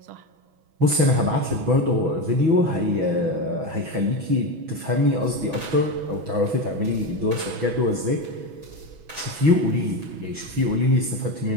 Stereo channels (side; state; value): left; late; 6.2 ms